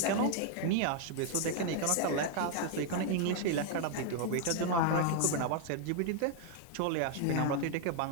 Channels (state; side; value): different; both; correlation 0.00